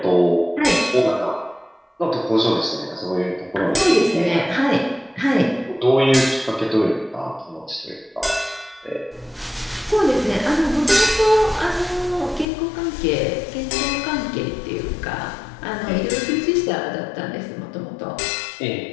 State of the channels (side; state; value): right; drops out; at 12.5 s